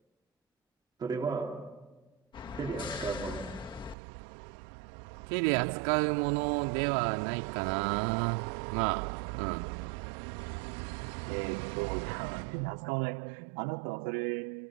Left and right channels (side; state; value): left; drops out; at 4.0 s